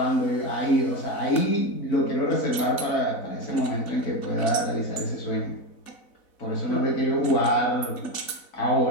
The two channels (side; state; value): right; late; 4.0 ms